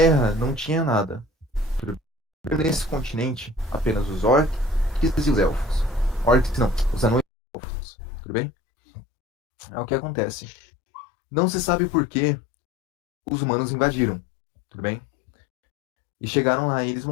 não tinha nada. Nesse continente, apenas os orcs e os elfos. Orcs não, os anões e os elfos. Tudo bem? É o que acontece. Não se sabe por que os humanos invadiram. Tudo bem? E chegaram lá eles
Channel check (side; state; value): right; drops out; at 7.2 s